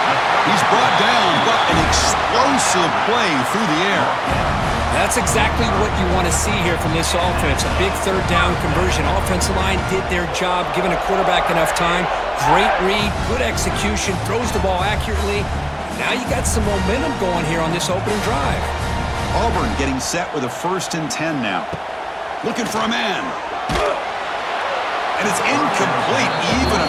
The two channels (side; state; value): both; identical; correlation 1.00